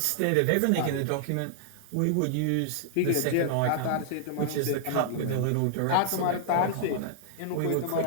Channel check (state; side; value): different; both; correlation -0.01